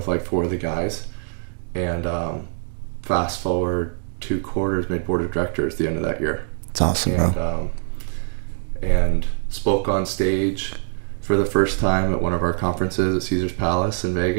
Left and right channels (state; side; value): silent; left; 60 dB below the other